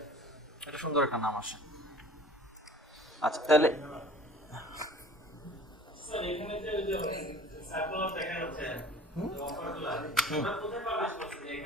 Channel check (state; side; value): normal; both; correlation 0.46